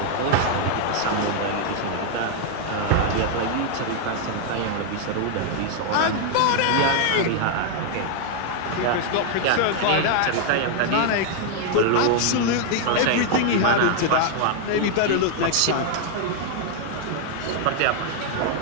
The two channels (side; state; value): both; different; correlation 0.00